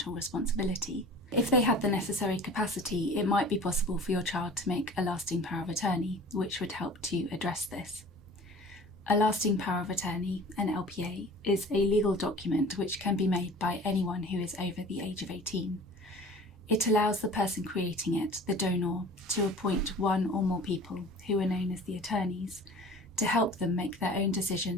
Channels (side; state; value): both; normal; correlation 0.43